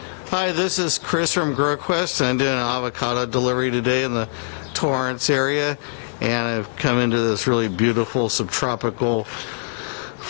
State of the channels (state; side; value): silent; right; digital silence